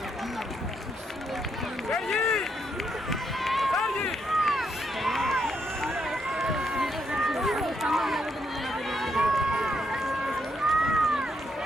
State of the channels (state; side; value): normal; both; correlation 0.77